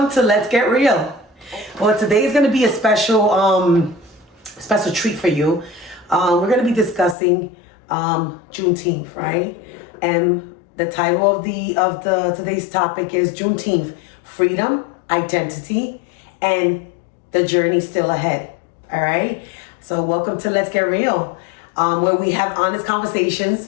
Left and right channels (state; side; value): drops out; right; at 7.2 s